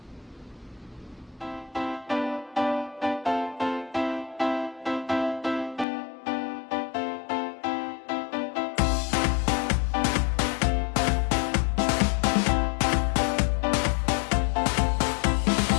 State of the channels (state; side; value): drops out; right; at 5.9 s